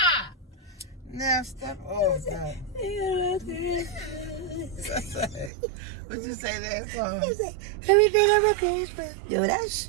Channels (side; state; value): left; drops out; at 5.5 s